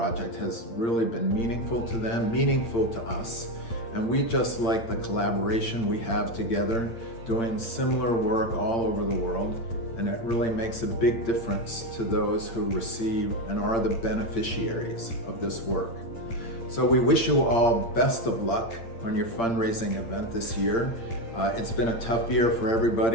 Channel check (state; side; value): late; right; 8.7 ms